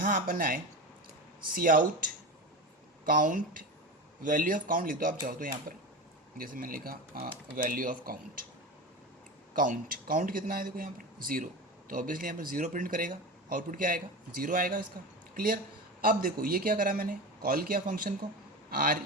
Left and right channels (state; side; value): normal; both; correlation 0.25